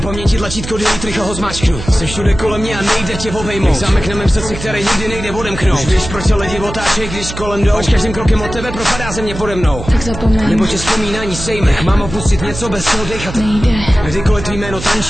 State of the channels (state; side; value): noise; right; hum, 10 dB below the sound